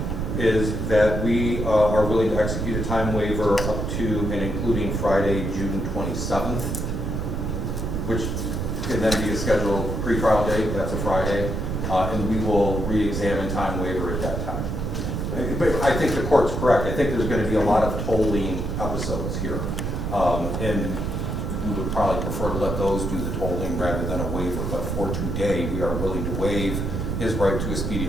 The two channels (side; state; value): right; noise; rumble, 2 dB below the sound